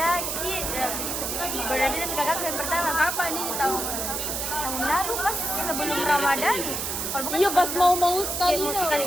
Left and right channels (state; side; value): noise; right; hiss, 2 dB below the sound